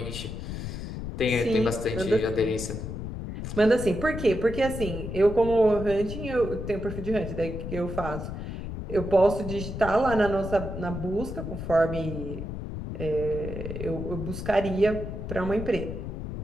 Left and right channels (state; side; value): noise; left; rumble, 6 dB below the sound